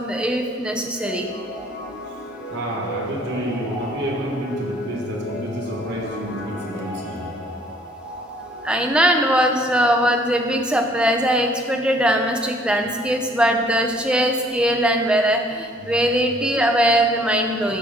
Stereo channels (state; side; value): normal; both; correlation 0.59